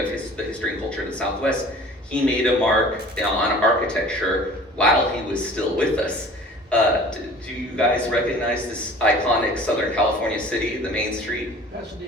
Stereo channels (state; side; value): normal; both; correlation 0.46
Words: the history and culture of the Southwest, he made a mark on architecture while he was still with us. Do you guys recognize this iconic Southern California city, the main street?